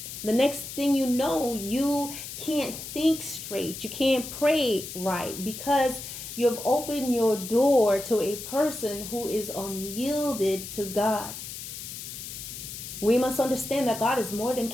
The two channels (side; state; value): left; noise; hiss, 9 dB below the sound